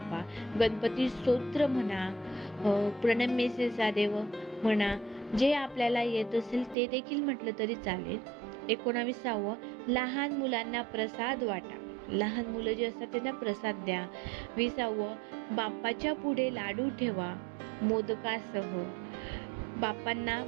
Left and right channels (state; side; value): drops out; left; at 6.8 s